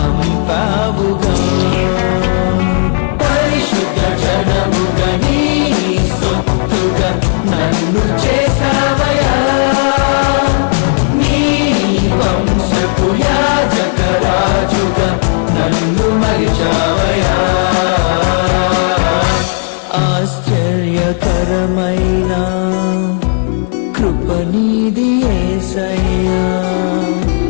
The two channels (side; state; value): right; silent; 63 dB below the other